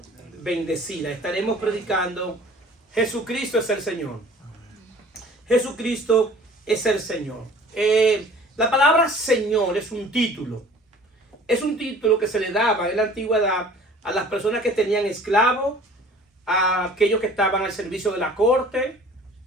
bendecida. Estaremos predicando: Jesucristo es el Señor. Jesucristo es el Señor. La palabra Señor es un título. Es un título que se le daba en la antigüedad a las personas que tenían esclavos, a aquellos que estaban al servicio de la corte,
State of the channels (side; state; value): both; normal; correlation 0.48